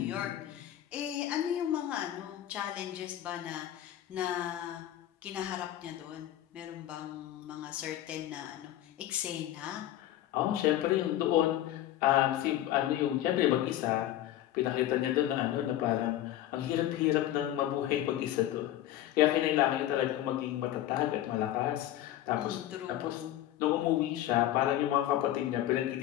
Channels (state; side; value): quieter; right; 13.1 dB